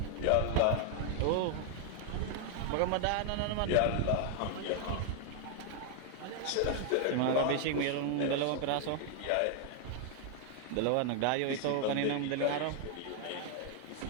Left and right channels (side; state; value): both; different; correlation 0.00